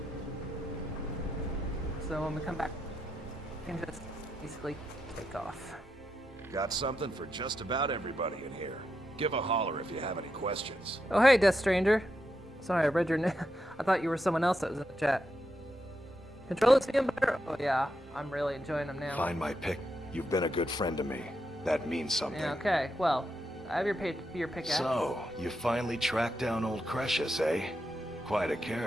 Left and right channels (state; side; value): normal; both; correlation 0.84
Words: So when we come back, we can just basically take off. Got something for just about everybody in here. Give a holler if you have any questions. Oh hey, Death Stranger. Sorry, I read your name. I thought you were someone else that was in the chat. Controllers feeling better? Oh yeah, I'm really enjoying them now. Find my pick. You've been a good friend to me. That means something. Yeah, okay. Well, I have your pickaxe. So, you finally tracked down old Crucius, eh? Quite a